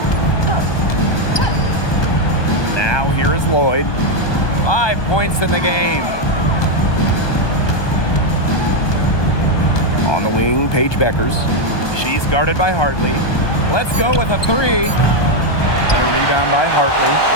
Now here is Lloyd. 5 points in the game. On the wing, Paige Beckers. She's guarded by Hartley. Let's go with a 3. The rebound by Hartley.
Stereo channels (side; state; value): right; late; 1.2 ms